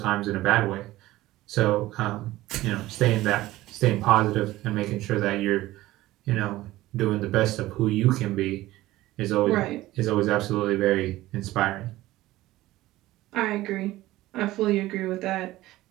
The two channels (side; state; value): left; quieter; 16.8 dB